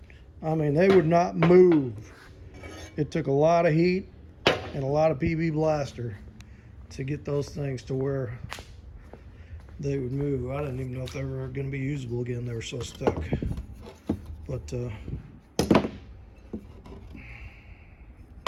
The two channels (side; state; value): both; identical; correlation 1.00